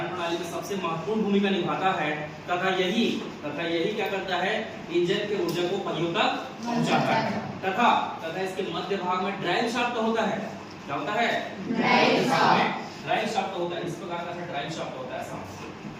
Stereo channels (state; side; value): identical; both; correlation 1.00